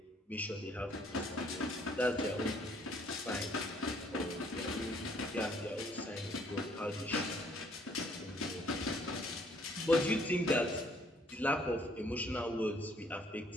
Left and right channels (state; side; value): normal; both; correlation 0.63